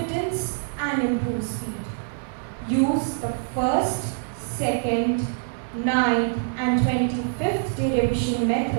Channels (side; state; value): left; silent; digital silence